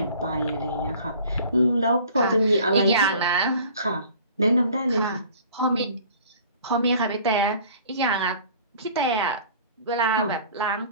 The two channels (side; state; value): both; inverted; correlation -0.48